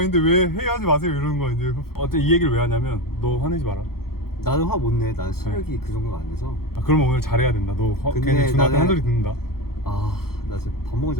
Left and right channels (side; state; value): right; late; 0.94 ms